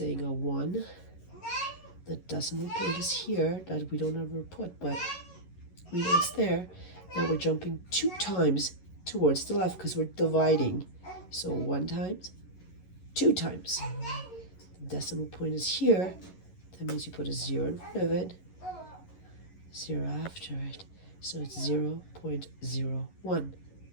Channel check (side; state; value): right; late; 11 ms